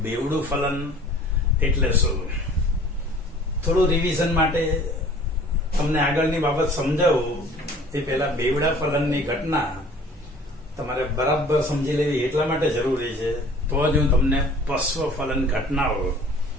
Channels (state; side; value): normal; both; correlation 0.49